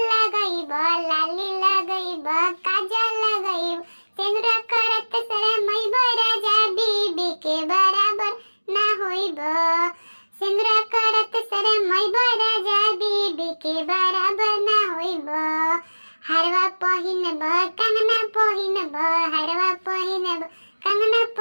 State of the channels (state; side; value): inverted; both; correlation -1.00